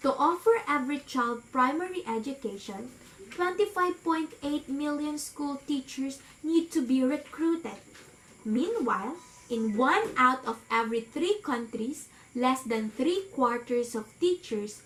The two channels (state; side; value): identical; both; correlation 1.00